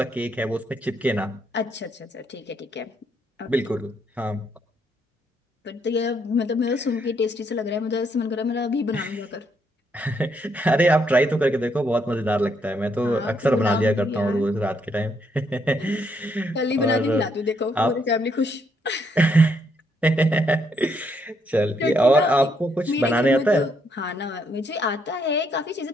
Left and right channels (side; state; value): both; normal; correlation 0.74